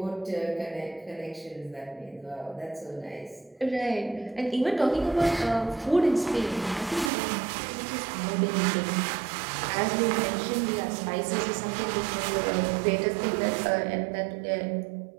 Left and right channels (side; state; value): left; drops out; at 7.1 s